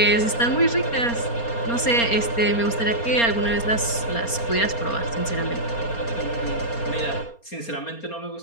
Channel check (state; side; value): late; right; 4.3 ms